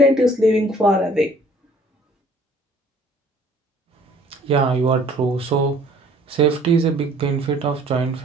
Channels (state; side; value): normal; both; correlation 0.56